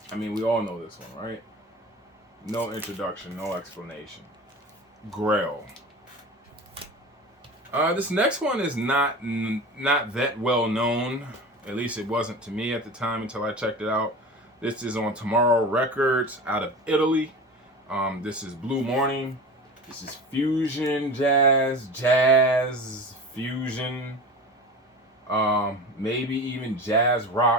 I mean, we all know this one, right? No introduction, no explanation. Grail. This next one is not that well known. At least it wasn't to me at the time until I checked it out. This is on Tomorrow Records out of Italy. This is Blue Morning. This is fusion jazz fusion, maybe even jazz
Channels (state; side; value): normal; both; correlation 0.33